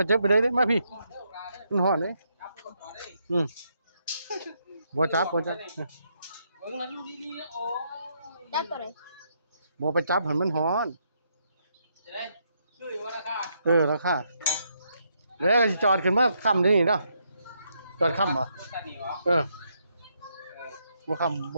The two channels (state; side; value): inverted; both; correlation -0.77